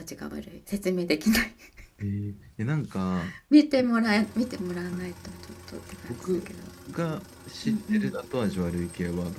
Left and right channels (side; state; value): both; identical; correlation 1.00